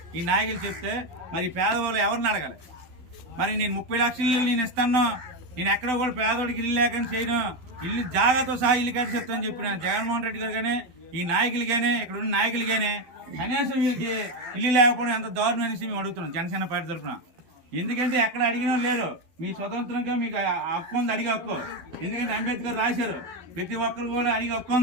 ఈ నాయకులు చెప్తే మరి పేదవాళ్ళు ఎవరిని అడగాలి? మరి నేను 30 లక్షల ఇల్లు నేను ఇస్తాను, నేను ఎక్కడ కూడా పేదవాడికి ఇల్లు లేకని చేయను, ఇల్లు జాగాతో సహా ఇల్లు కట్టి చెప్తానని చెప్పిన జగన్మోహన్ రెడ్డి గారు కానీ ఈ నాయకులు కానీ ఇక్కడ ఉన్న నాయకులు కానీ కనీసం వీళ్ళకి ఇల్లు లేకపోవడం ఎంత దారుణం అనేసి మేము అడుగుతున్నాం జనసేన పార్టీ తరఫున. ఎందుకంటే ఎక్కడ అడిగినా లేరు. మీ స్వతంత్రంగా మీకు హక్కు ఉంది, అడిగే హక్కు. ఎందుకంటే అంబేద్కర్ రాశారు ప్రతి ఒక్కరు కూడా అడిగే హక్కు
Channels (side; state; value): left; late; 12 ms